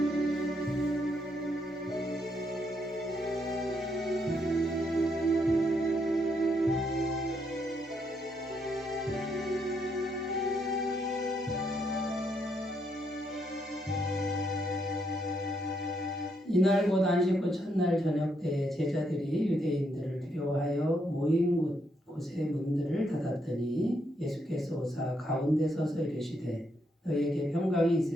이날 곧 안식구 첫날 저녁 때 제자들이 유대인들을 두려워하여 모인 곳의 문들을 닫았더니 예수께서 오사 가운데 서서 이르시되 너희에게 평강이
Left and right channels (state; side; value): normal; both; correlation 0.76